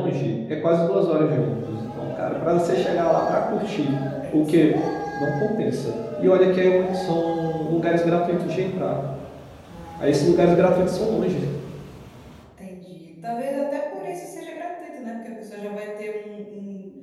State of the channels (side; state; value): both; identical; correlation 1.00